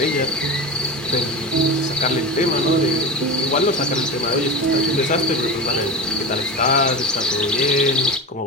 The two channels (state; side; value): normal; both; correlation 0.25